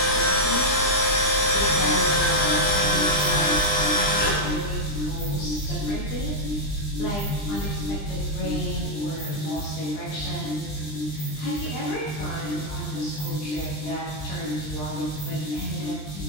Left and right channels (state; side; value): late; right; 20 ms